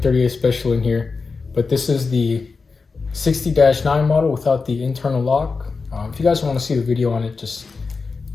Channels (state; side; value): quieter; right; 4.5 dB